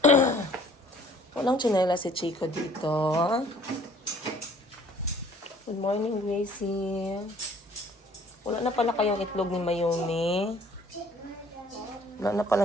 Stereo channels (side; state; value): both; normal; correlation 0.56